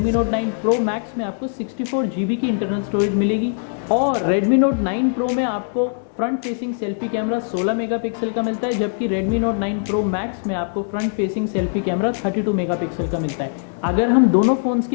Note 9 Pro Max में आपको 64GB की इंटरनल स्टोरेज मिलेगी। और Redmi Note 9 Pro में आपको front facing selfie camera 16 megapixel का मिलता है, जबकि Redmi Note 9 Pro Max में आपको front facing selfie camera 32 megapixel का मिलता है। अगर हम दोनों फ़ोन्स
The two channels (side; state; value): right; silent; digital silence